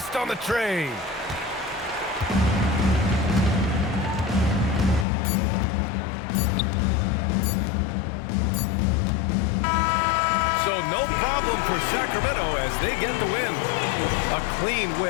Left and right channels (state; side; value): drops out; right; at 5.1 s